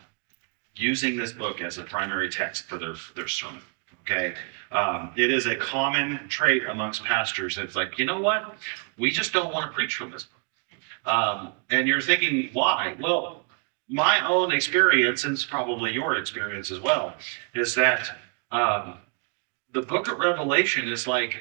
using this book as a primary text for their sermon, okay? It is a common trait amongst pastors. It's like, you know what? We just don't want to preach from this book. And you're thinking, why? Well, my own experience, and it's probably your experience as well, is that the book of Revelation is like,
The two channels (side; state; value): left; quieter; 37.7 dB